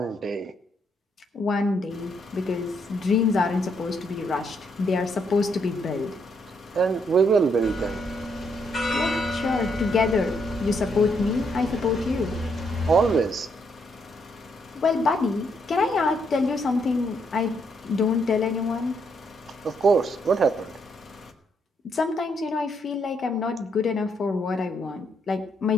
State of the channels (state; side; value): normal; both; correlation 0.74